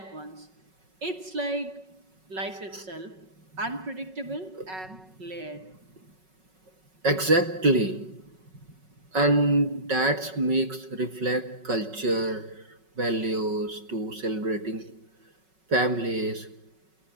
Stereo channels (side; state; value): left; late; 5.4 ms